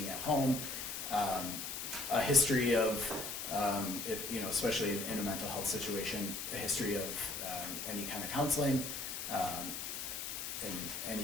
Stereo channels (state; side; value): noise; left; hiss, 5 dB below the sound